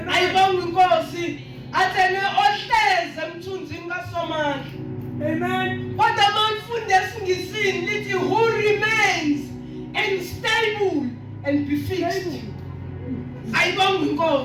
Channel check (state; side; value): identical; both; correlation 1.00